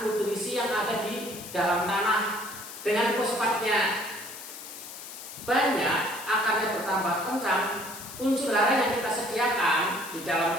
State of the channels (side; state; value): left; noise; hiss, 12 dB below the sound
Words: nutrisi yang ada di dalam tanah. Dengan fosfatnya banyak, akarnya bertambah kencang, unsur hara yang kita sediakan di dalam